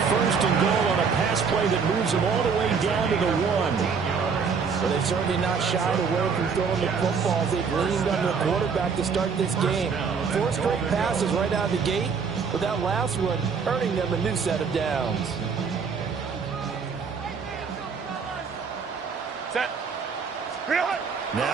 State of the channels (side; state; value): left; quieter; 5.8 dB